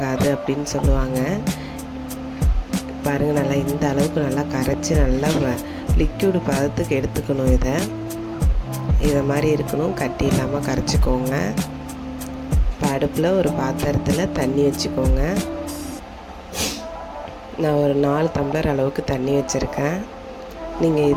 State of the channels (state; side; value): identical; both; correlation 1.00